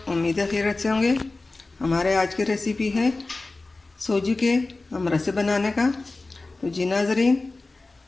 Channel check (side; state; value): right; quieter; 3.3 dB